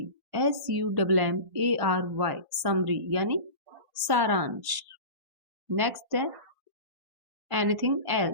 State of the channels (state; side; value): late; left; 1.5 ms